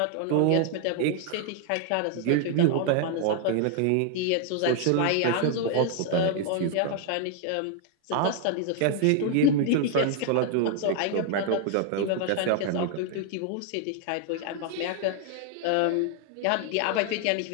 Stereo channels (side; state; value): both; different; correlation 0.00